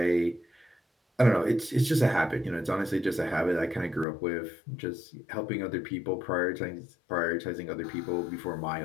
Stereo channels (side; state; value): right; drops out; at 4.0 s